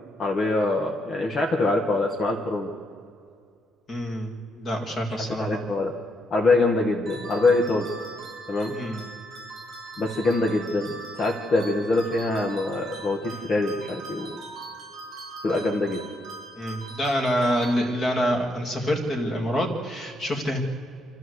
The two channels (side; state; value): both; normal; correlation 0.77